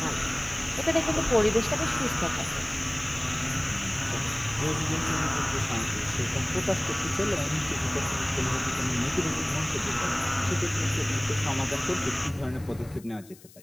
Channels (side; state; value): left; noise; hiss, 23 dB below the sound